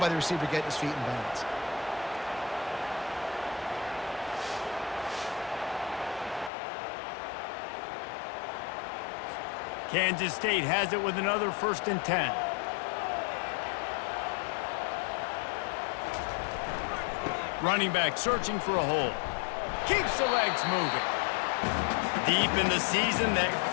the receiver getting his feet in bounds. Kansas State has it with another 1st and 10. Running back searching for a hole. Keeps the legs moving. Deep in the season, that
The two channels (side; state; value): right; drops out; at 6.5 s